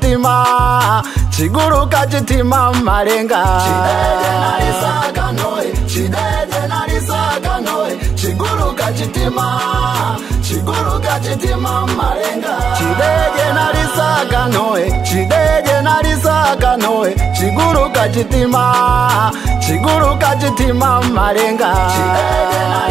chiguruka chitima malenga chideje nalisaka noe chideje nalisaka noe chiguruka chitima chiguruka chitima malenga chideje nalisaka noe chideje nalisaka noe chiguruka chitima chiguruka chitima malenga chideje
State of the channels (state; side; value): quieter; left; 6.3 dB